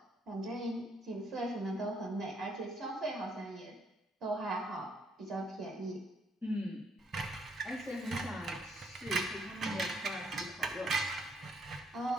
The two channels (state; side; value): normal; both; correlation 0.70